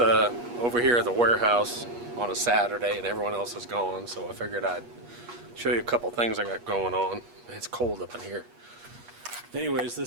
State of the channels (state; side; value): late; left; 8.3 ms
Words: here at the warehouse on a Saturday and everyone else is gone, so I figured I'd show you a couple things I got going on. It's cold up in here. Anyways,